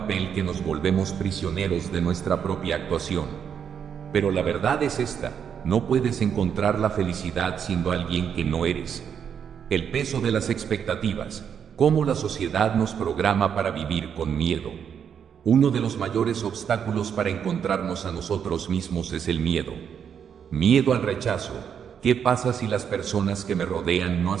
que nos volvemos prisioneros de nuestra propia actuación. Pero la verdad es esta: no puedes encontrar la felicidad siendo alguien que no eres. El peso de las expectativas. Cómo la sociedad nos programa para vivir con miedo. Uno de los mayores obstáculos para encontrarnos a nosotros mismos es el miedo. Miedo al rechazo. ¿Qué pasa si las personas que me rodean no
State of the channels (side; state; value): left; quieter; 7.8 dB